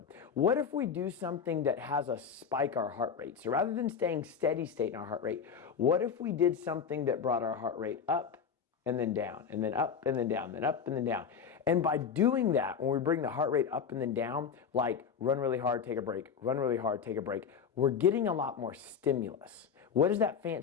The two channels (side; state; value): right; quieter; 6.8 dB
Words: what if we do something that has us spike our heart rate? So rather than staying steady state in our heart rate, what if we did something that brought our heart rate up and then down, and then up and then down, then up and then down? And by doing that, when we bring the heart rate up and then down, like run really hard, take a break, run really hard, take a break, we're getting a lot more stimulus. What does that